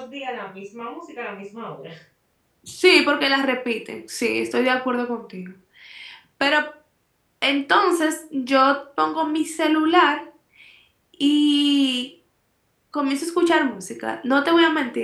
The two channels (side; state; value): both; identical; correlation 1.00